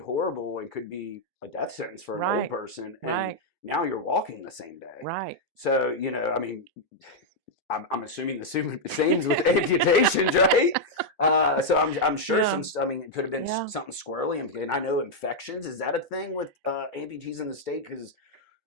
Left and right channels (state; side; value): normal; both; correlation -0.03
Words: and could be a death sentence for an old Right. person. And Right. now you're walking the same day. Right. So, I mean, I'm assuming the same's with amputations, right? So I'm sure Yeah. it could have been Yeah. something squirrely. And I know infections. Is that a thing with amputees in the state? Because